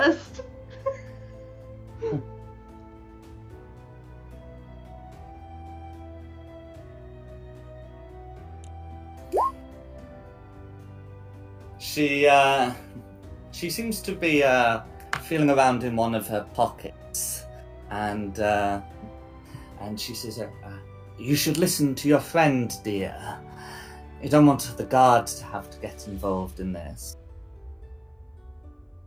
She seems to be feeling around in one of her pockets, and she says, "You should listen to your friend, dear. You don't want the guards to have to get involved in this."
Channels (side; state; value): both; identical; correlation 1.00